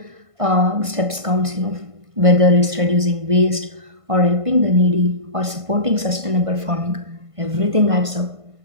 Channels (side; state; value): left; late; 1.5 ms